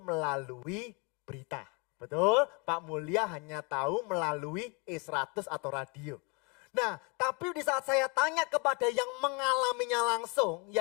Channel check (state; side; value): quieter; right; 32.0 dB